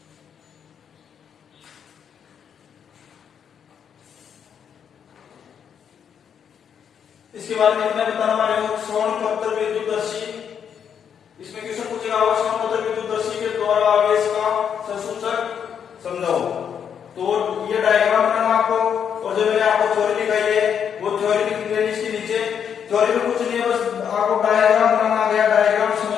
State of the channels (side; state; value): right; quieter; 7.9 dB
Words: इसके बाद में मैं बताना वाला हूं स्वर्ण पत्र विद्युतदर्शी। इसमें क्वेश्चन पूछेगा स्वर्ण पत्र विद्युतदर्शी के द्वारा आवेश का संसूचक समझाओ। तो ये डायग्राम बनाना आपको, और जो मैंने आपको थ्योरी दिखाई है वो थ्योरी लिख लेनी इसके नीचे। थ्योरी में कुछ नहीं है, बस आपको डायग्राम बनाना आ गया, डायग्राम समझ